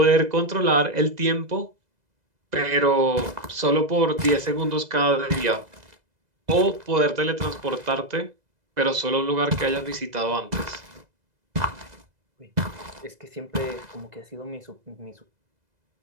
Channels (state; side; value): late; left; 2.0 ms